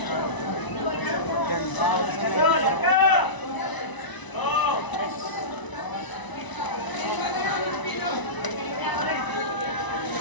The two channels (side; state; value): right; late; 1.0 ms